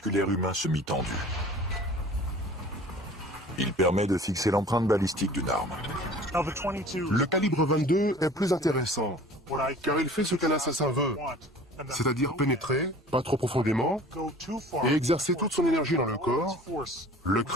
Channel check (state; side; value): normal; both; correlation 0.46